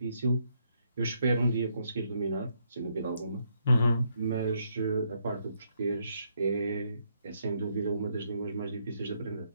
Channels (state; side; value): inverted; both; correlation -0.74